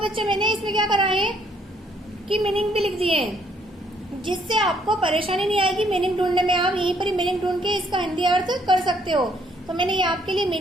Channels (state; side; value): normal; both; correlation 0.67